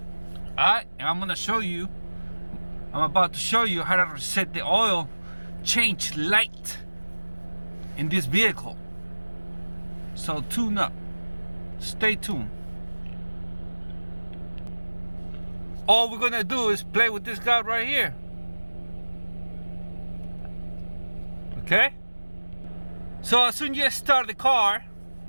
Alright, and I'm about to show you how to reset the oil change light in this vehicle. So tune up. Stay tuned. All we're gonna do is play with this guy right here. Okay? So as soon as you start the car,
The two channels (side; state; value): both; inverted; correlation -1.00